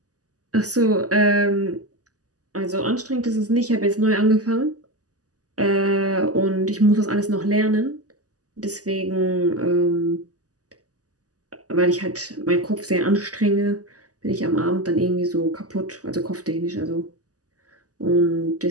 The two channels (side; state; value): left; late; 0.67 ms